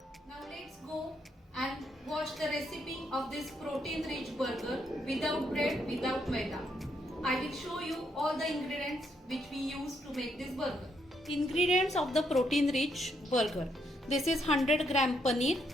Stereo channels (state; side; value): normal; both; correlation 0.76